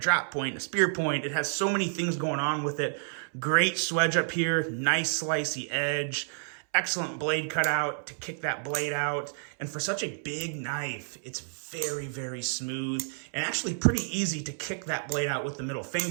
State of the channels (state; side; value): silent; left; 58 dB below the other